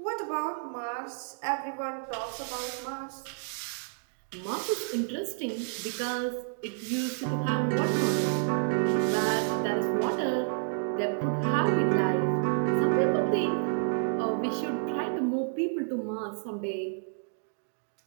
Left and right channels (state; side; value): silent; left; digital silence